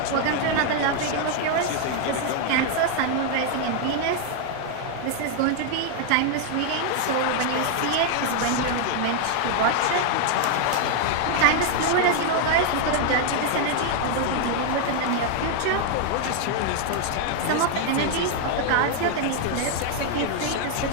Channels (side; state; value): both; different; correlation 0.00